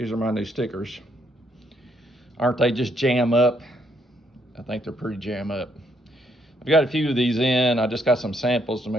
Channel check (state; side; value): normal; both; correlation 0.73